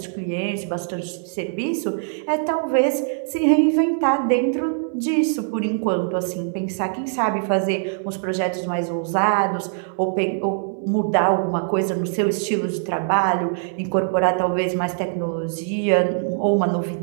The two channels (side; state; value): left; silent; 64 dB below the other